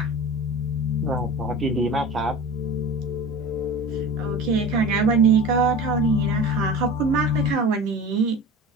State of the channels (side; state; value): both; normal; correlation 0.35